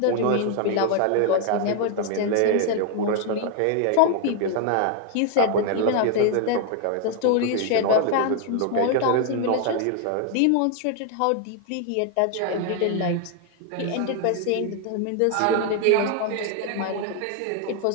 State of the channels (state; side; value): different; both; correlation 0.00